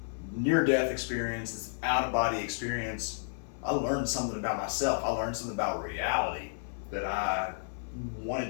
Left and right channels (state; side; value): silent; right; 57 dB below the other